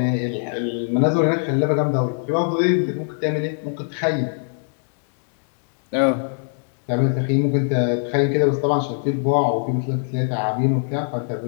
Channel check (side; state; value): right; silent; digital silence